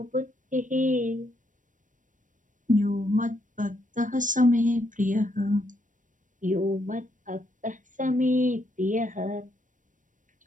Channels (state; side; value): late; left; 0.37 ms